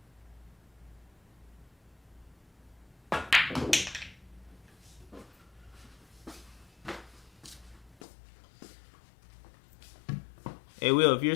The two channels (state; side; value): drops out; right; at 8.0 s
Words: Hey Will, if you're